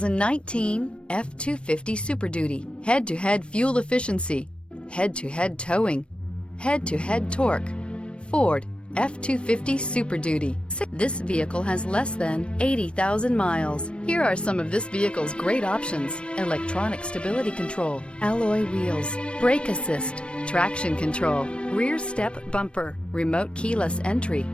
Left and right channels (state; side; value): late; right; 0.058 ms